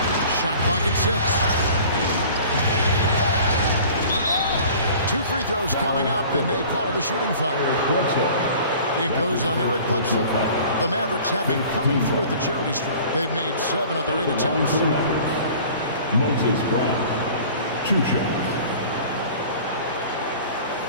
Shot clock at 6. 2 free throws coming up, and they call the shooting foul. It goes on Eric Bledsoe. The Mavericks have been coming through at the charity stripe. They've made 7 of their 8 attempts. Moses Brown, 2 shots.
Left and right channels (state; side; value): inverted; both; correlation -0.46